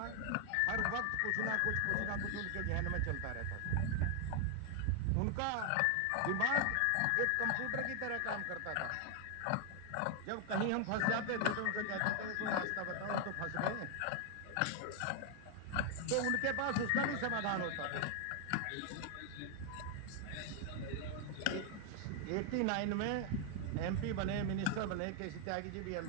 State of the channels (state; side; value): different; both; correlation 0.00